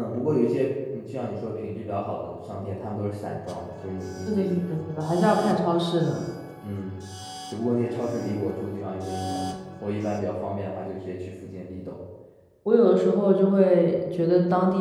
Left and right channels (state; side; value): identical; both; correlation 1.00